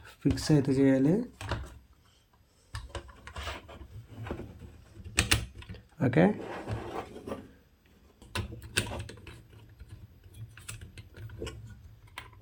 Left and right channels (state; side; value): identical; both; correlation 1.00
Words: ఫిక్స్ అయితే చేయాలి. ఓకే,